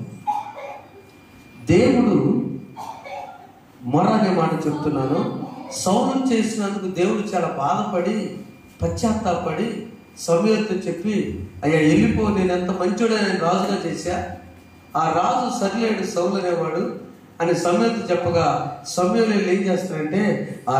దేవుడు మొర అనే మాట చెప్తున్నాను. సౌలు చేసినందుకు దేవుడు చాలా బాధపడి పశ్చాత్తాపడి సమూయేలుతో చెప్పి, అయ్యా వెళ్ళిపో, నేను ఎంత మంచోడే, నేను రాజుగా చేశా, ఆ రాజు సరిలేడు సౌలు అనేవాడు అని సమూయేలుతో చెప్పగా, సమూయేలు ఏం చేస్తాడంటే ఆ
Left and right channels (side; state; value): both; identical; correlation 1.00